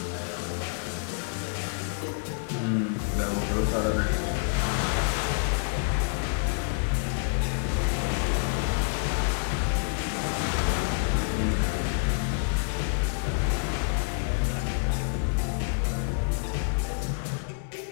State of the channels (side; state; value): right; silent; 59 dB below the other